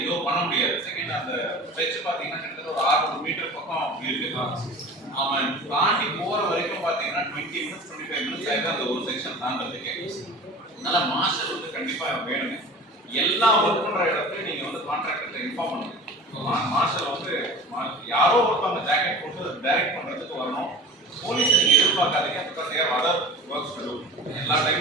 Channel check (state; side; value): normal; both; correlation 0.38